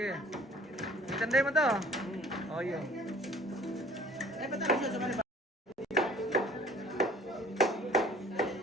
Itandai mo to. Oh, iya.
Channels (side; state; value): both; normal; correlation 0.52